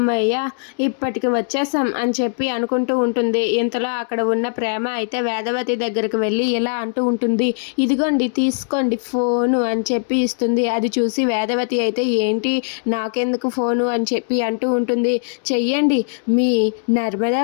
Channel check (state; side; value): silent; right; 61 dB below the other